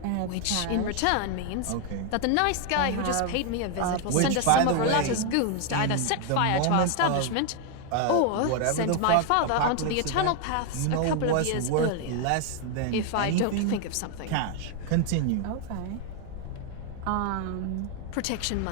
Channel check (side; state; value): both; different; correlation 0.00